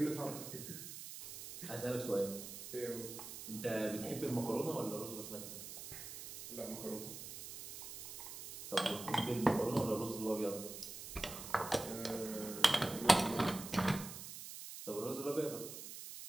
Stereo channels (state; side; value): noise; right; hiss, 10 dB below the sound